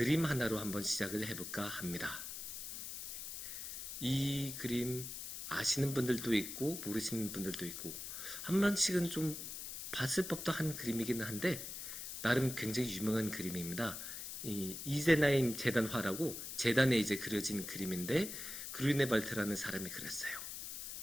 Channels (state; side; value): noise; left; hiss, 7 dB below the sound